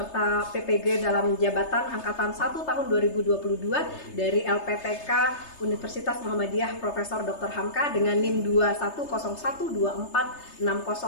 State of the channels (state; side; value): late; right; 3.3 ms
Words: PPG dalam jabatan Angkatan 1 tahun 2022 dari LPTK Universitas Muhammadiyah Profesor Dr. Hamka dengan NIM